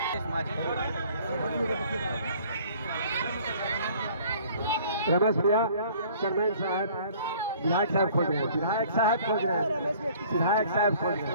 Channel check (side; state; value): both; inverted; correlation -0.53